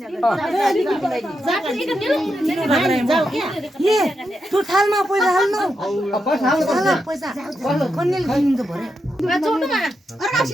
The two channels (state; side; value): normal; both; correlation 0.85